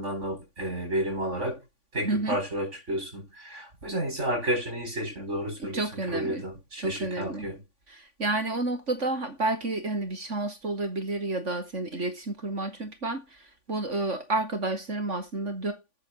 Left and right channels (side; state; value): left; late; 3.5 ms